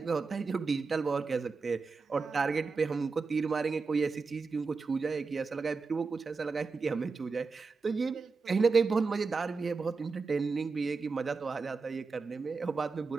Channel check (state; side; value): quieter; left; 4.5 dB